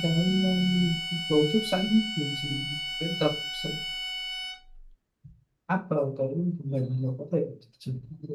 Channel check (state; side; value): identical; both; correlation 1.00